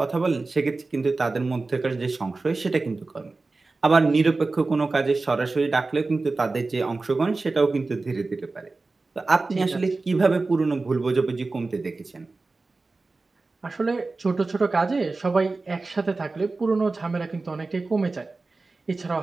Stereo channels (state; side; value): quieter; left; 3.6 dB